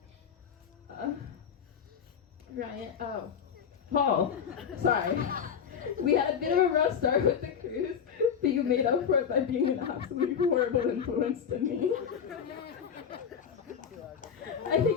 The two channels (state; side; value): quieter; right; 7.4 dB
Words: Ryan, Paul, sorry. We had a bit of a rough start with the cruise, but you made up for it by being an absolutely horrible influence to me. I